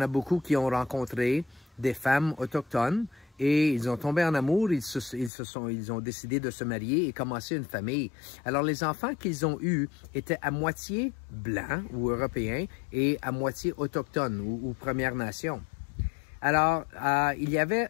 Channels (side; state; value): right; drops out; at 5.3 s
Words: beaucoup qui ont rencontré des femmes autochtones et ils ont tombé en amour, ils ont décidé de se marier et commencer une famille. Alors, les enfants qu'ils ont eus étaient à moitié blancs ou européens et à moitié autochtones ou Première Nation. Alors, il y avait